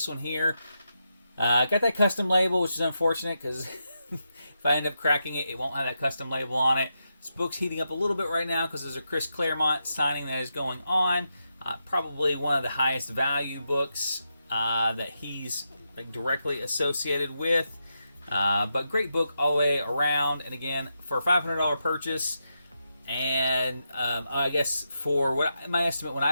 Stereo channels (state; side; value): inverted; both; correlation -0.85